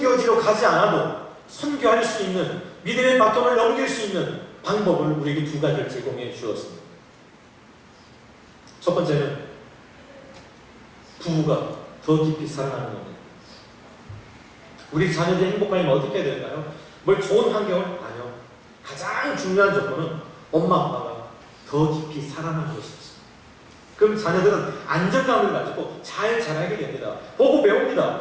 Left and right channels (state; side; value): identical; both; correlation 1.00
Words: 가지 않아도 선교할 수 있는 믿음의 바통을 넘길 수 있는 방법을 우리에게 두 가지를 제공해 주었습니다. 첫 번째는 부부가 더 깊이 사랑하는 겁니다. 우리 자녀들이 행복하려면 어떻게 해야 될까요? 뭘 좋은 환경을? 아니요. 가장 중요한 조건은 엄마 아빠가 더 깊이 사랑하는 것이었어요. 그럼 자녀들은 안정감을 가지고 잘 자라게 됩니다. 보고